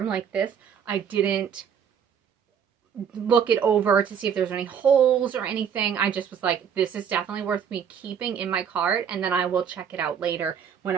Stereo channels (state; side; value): quieter; left; 7.8 dB